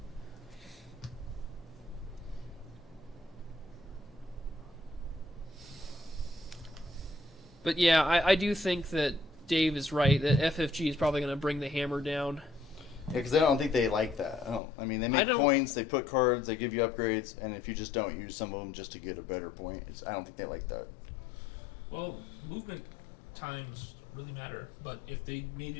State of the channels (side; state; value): right; drops out; at 14.6 s